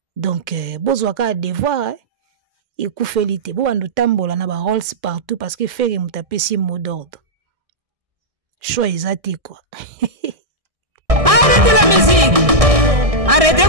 Donc bozwaka devoir ekoufelite bo bandu tambola na ba Rolls partout parce que Ferré muta pesi mot d'ordre. Choix exact quoi.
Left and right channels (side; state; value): left; late; 1.6 ms